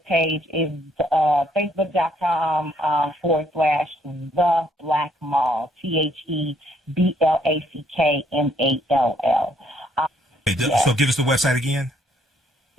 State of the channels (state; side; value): normal; both; correlation 0.67